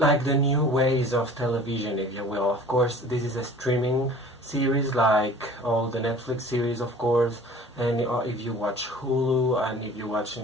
the new ways of television, if you will. Of course, this is a streaming series like all the Netflix series, of course, and if you watch Hulu and if you watch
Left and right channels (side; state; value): both; normal; correlation 0.45